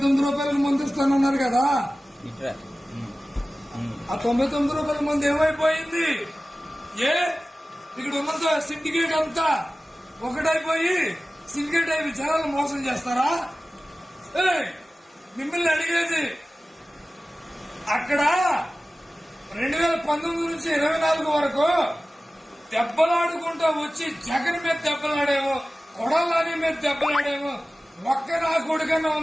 రూపాయలకు మందు ఇస్తానన్నారు కదా, ఆ 99 రూపాయల మంది ఏమైపోయింది? ఇక్కడ ఉన్న సిండికేట్ అంతా ఒకటైపోయి సిండికేట్ అయిపోయి జనాలు మోసం చేస్తారా? మిమ్మల్ని అడిగేది, అక్కడ 2019 నుంచి 24 వరకు దెబ్బలాడుకుంటూ వచ్చి జగన్ మీద దెబ్బలాడేమో, కొడాలని మీద దెబ్బలాడేమో, ఒక్క నా కొడుకన్నా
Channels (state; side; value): normal; both; correlation 0.96